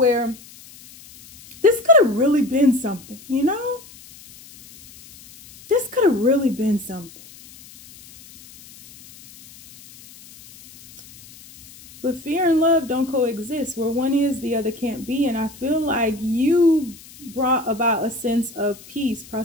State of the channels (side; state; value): left; noise; hiss, 21 dB below the sound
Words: this could have really been something, you know? This could have really been something. But fear and love don't coexist. Where one is, the other can't be. And I feel like you brought about a sense of peace,